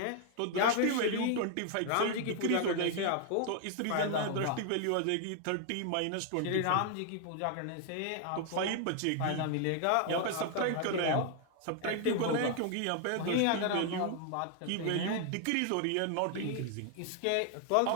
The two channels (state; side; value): different; both; correlation 0.00